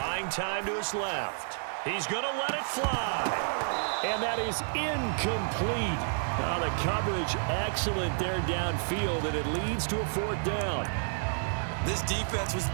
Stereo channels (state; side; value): silent; left; digital silence